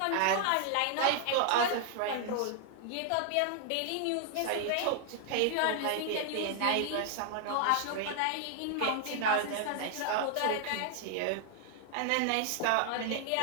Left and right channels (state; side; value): different; both; correlation 0.00